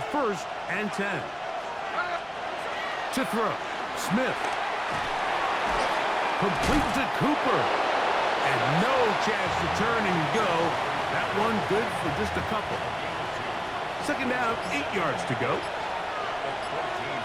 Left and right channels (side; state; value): both; identical; correlation 1.00